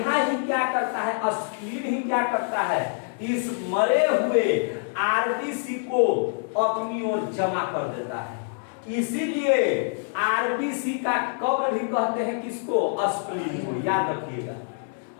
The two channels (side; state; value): right; silent; digital silence